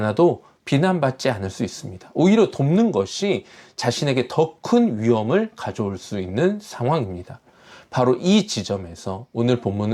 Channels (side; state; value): both; identical; correlation 1.00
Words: 비난받지 않을 수 있습니다. 오히려 돕는 것이 자신에게 더 큰 위험을 가져올 수 있는 상황입니다. 바로 이 지점에서 오늘